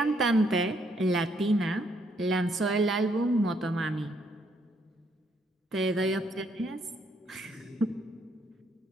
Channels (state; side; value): normal; both; correlation 0.71